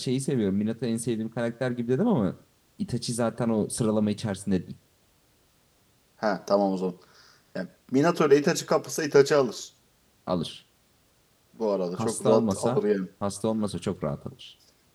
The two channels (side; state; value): both; identical; correlation 1.00